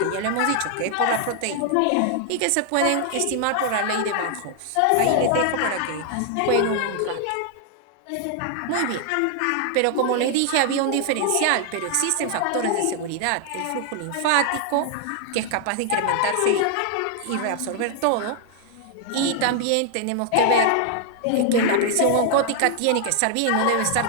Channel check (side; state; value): both; different; correlation 0.00